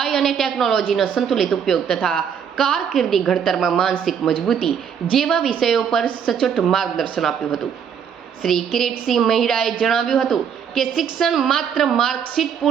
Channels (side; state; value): left; quieter; 7.6 dB